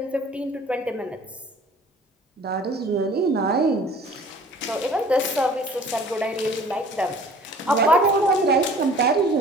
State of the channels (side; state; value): both; normal; correlation 0.49